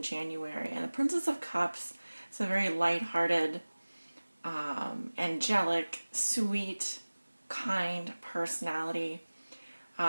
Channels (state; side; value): inverted; both; correlation -1.00